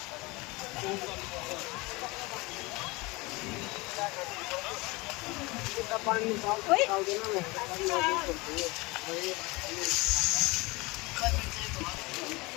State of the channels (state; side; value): quieter; right; 24.2 dB